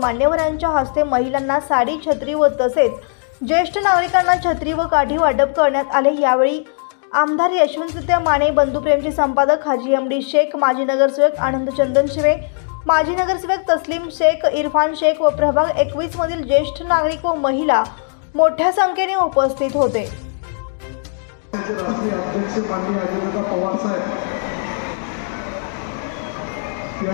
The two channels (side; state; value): right; silent; 67 dB below the other